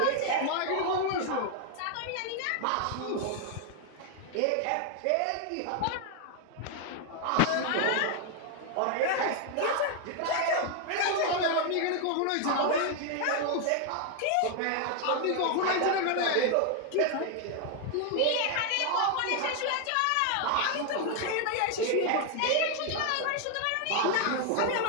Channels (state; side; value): different; both; correlation 0.00